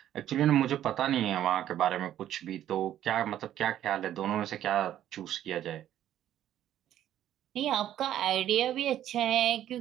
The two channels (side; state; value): left; quieter; 11.6 dB